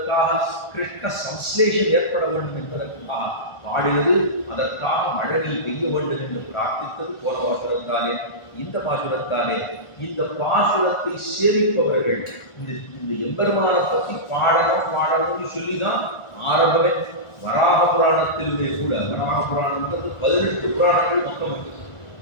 கிருஷ்ண சம்ஸ்லேஷன் ஏற்பட வேண்டும் என்பதற்காக பாடினது. அதற்காக மழை பெய்ய வேண்டும் என்று பிரார்த்தித்தது போன பாசுரத்தாலே. இந்த பாசுரத்தாலே இந்த பாசுரத்தை சேமிப்பவர்கள் இந்த எம்பெருமானை பற்றி பாடணும்னு சொல்லிதான் ஆரம்பமே. வராக புராணத்திலுமே கூட, வராக புராணம்ன்றது 18 புராணங்கள் மொத்தம் இருக்கு.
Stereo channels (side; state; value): right; late; 1.4 ms